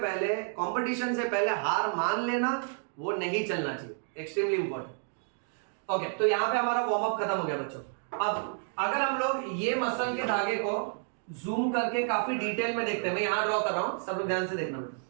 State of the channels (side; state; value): left; silent; 58 dB below the other